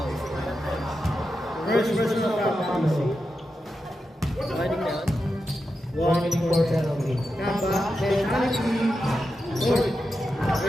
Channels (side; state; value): both; normal; correlation 0.89